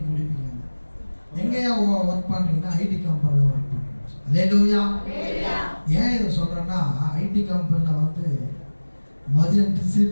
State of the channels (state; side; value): inverted; both; correlation -1.00